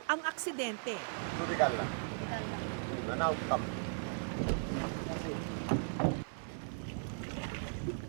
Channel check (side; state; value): left; silent; digital silence